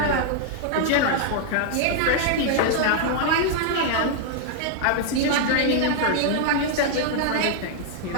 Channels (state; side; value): different; both; correlation -0.01